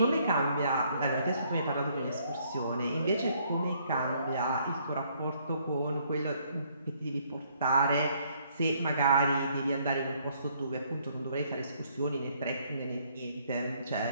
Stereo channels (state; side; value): inverted; both; correlation -0.67